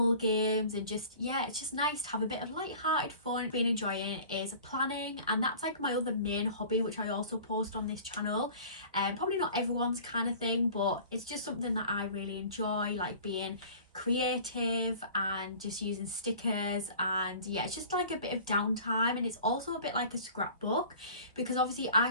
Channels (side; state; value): both; inverted; correlation -0.44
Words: games, and just, yeah, it's just nice to have a bit of light-hearted fun. Been enjoying is planning, and that's like my other main hobby, which I also post on this channel. Probably not everyone's kind of thing, but it's just something that I really enjoy, like being creative and just using stickers. And yeah, it's just like a bit of downtime, and it's also a bit like a scrapbook, because obviously I